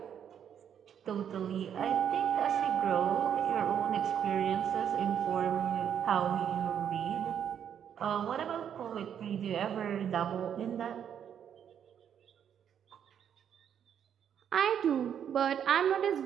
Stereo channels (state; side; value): quieter; left; 8.7 dB